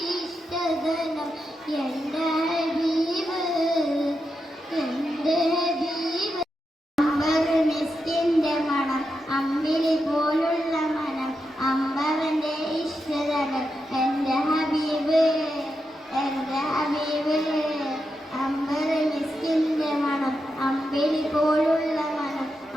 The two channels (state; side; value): normal; both; correlation 0.86